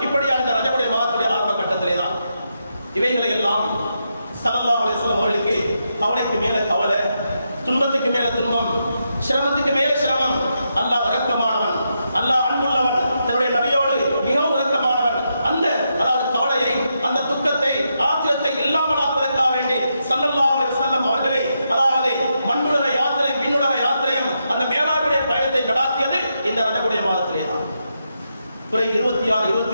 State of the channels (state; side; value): inverted; both; correlation -0.83